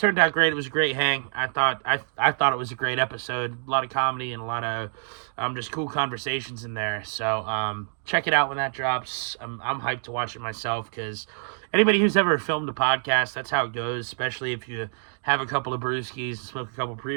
out great. It was a great hang. I thought it was a great episode. A lot of comedy and a lot of just cool conversations in there. So check it out when that drops. I'm hyped to watch it myself because anybody who's ever filmed a podcast, that's how it goes, especially if you have a couple of brewskis and smoke a couple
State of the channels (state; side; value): silent; left; digital silence